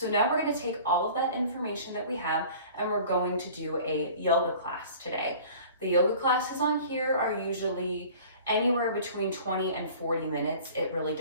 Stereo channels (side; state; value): both; inverted; correlation -0.45